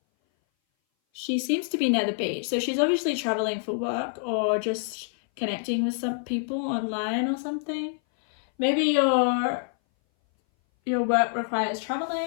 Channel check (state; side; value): silent; right; 58 dB below the other